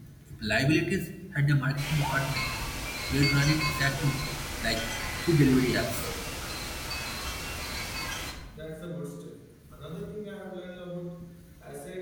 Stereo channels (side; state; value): both; identical; correlation 1.00